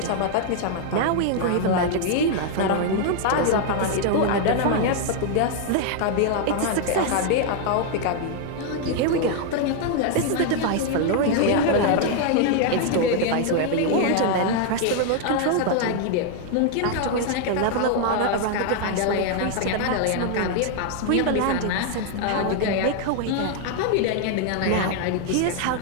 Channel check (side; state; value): both; different; correlation 0.00